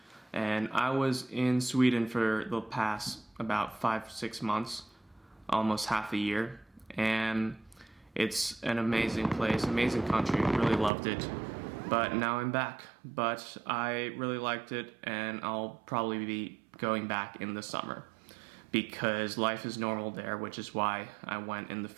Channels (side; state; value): left; drops out; at 10.9 s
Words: and I was in Sweden for the past about 5-6 months, almost half a year, and it's an amazing place, amazing country, really loved it. But now I'm back, but I really liked it, and I'll probably be going back in the summer, because life is normal there, which is why I went in the